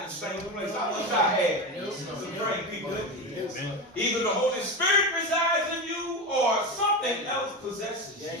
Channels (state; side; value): normal; both; correlation 0.20